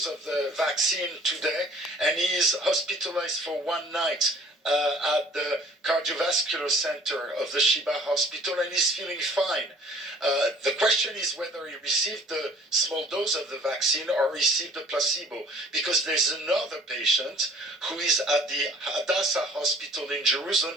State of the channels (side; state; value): both; normal; correlation 0.52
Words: of the vaccine today, and he is hospitalized for one night at the cardiovascular center of the Sheba Hospital, and he's feeling fine. The question is whether he received the small dose of the vaccine or received a placebo, because there's another patient who is at the Hadassah Hospital in Jerusalem